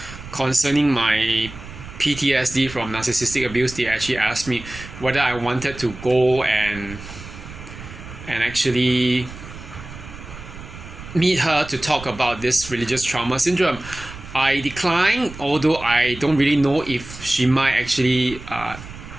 concerning my PTSD from narcissistic abuse, they actually asked me whether I wanted to go and actually meet her to talk about this religious trauma syndrome. I declined, although I don't really know if she might actually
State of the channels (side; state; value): right; noise; rumble, 14 dB below the sound